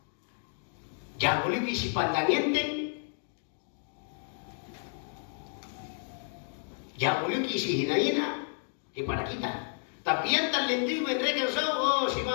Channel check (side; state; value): right; silent; digital silence